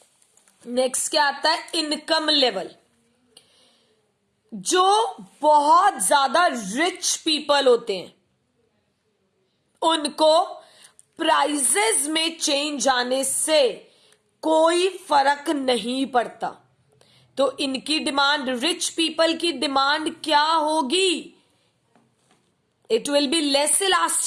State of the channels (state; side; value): identical; both; correlation 1.00